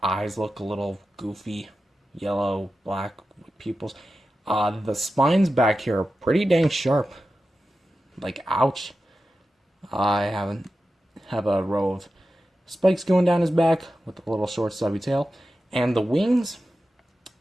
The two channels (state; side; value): normal; both; correlation 0.92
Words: look a little goofy, yellow, black pupils. The spines back here are pretty dang sharp. Like, ouch. I have a row of spikes going down his back with a little short stubby tail. And the wings,